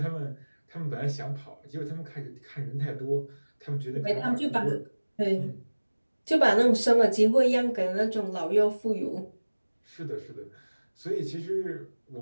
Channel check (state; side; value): inverted; both; correlation -1.00